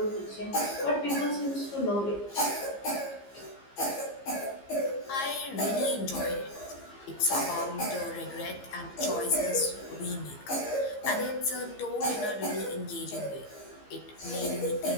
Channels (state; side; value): late; right; 15 ms